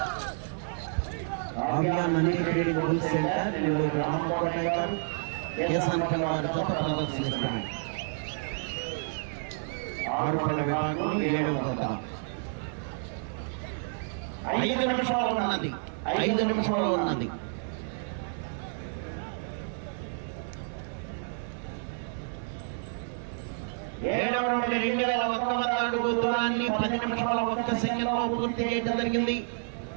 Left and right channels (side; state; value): left; silent; 58 dB below the other